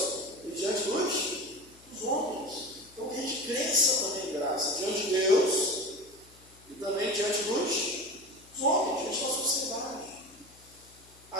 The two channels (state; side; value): noise; left; hum, 26 dB below the sound